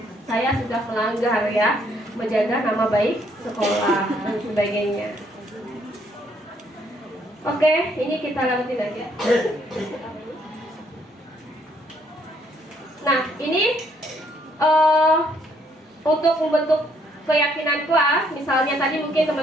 saya sudah melanggar ya, menjaga nama baik sekolah dan sebagainya. Oke, ini kita lanjutin aja. Nah, ini untuk membentuk keyakinan kelas, misalnya tadi mungkin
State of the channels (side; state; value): both; normal; correlation 0.68